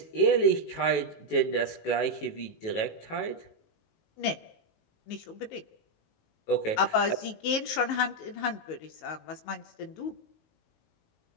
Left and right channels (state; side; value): late; right; 19 ms